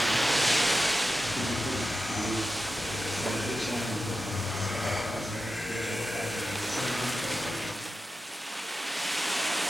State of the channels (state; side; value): normal; both; correlation 0.92